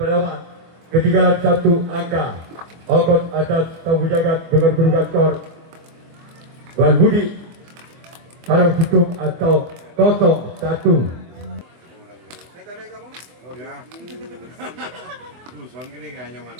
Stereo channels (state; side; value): late; left; 24 ms